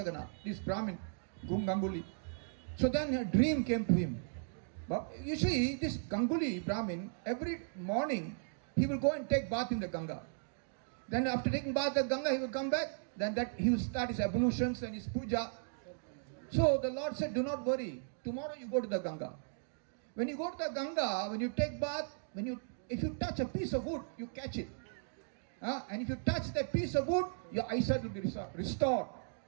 this Brahmin, Ganguly. So then a dream came to him. But you see, this Ganguly Brahmin, every morning, he will go and take bath in the Ganga. Then after taking bath in the Ganga, he will come back. Then he will start his ablutions and his puja. So the Lord said, do not worry. Tomorrow you go to the Ganga. When you go to the Ganga, when you take bath, if you touch a piece of wood, you catch it. And if you touch that piece of wood, your eyesight will be restored.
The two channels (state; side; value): silent; left; digital silence